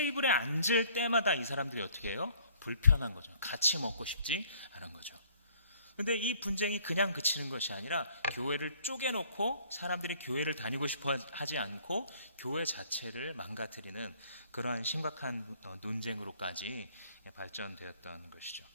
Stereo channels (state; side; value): inverted; both; correlation -0.59